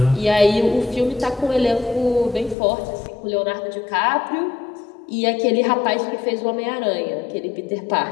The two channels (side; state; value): right; drops out; at 2.6 s